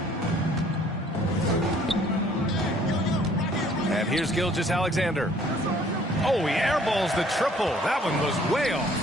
And here's Gilgeous-Alexander. Oh, he airballs the triple. That one was way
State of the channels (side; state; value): both; normal; correlation 0.58